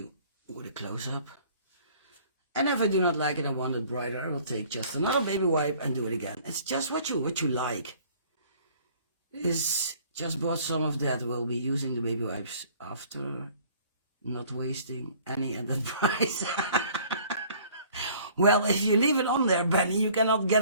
with a close-up. And if I do not like it, I want it brighter, I will take just another baby wipe and do it again. It's just what you like. Is just bought some of that. We'll be using the baby wipes after, not wasting any at that price. Well, if you leave it on there, Benny, you cannot get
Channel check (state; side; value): inverted; both; correlation -0.54